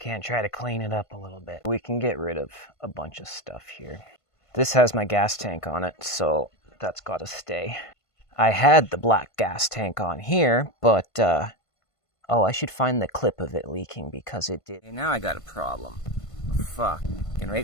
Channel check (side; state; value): right; late; 1.5 ms